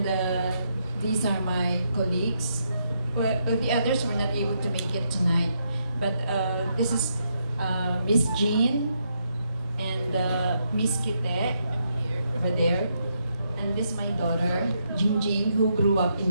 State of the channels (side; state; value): both; inverted; correlation -0.79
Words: these are my colleagues. Well, the others were not able to make it tonight, but this is Miss Jean and Miss Kite over there, and this is my daughter Jingjing, who grew up in